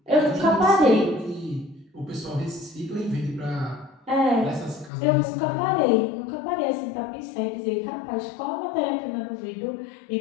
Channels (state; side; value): drops out; right; at 4.9 s